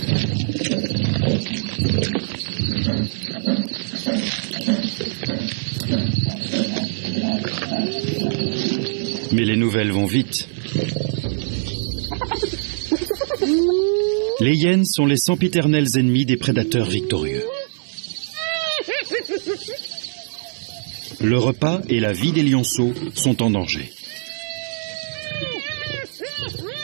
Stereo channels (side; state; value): left; silent; digital silence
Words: Mais les nouvelles vont vite. Les hyènes sont les sempiternels ennemis des prédateurs victorieux. Le repas et la vie des lionceaux sont en danger.